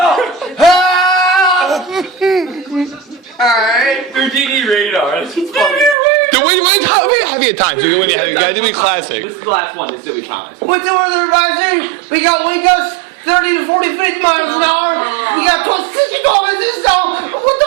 Alright. Houdini radar. That's funny. How many times? You gotta do me classic. This is the last one. This is what we promised. What's the weather advisory? We got wind gusts 30 to 40 miles an hour. We got 60 kilometers an hour. What the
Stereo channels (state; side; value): drops out; left; at 6.0 s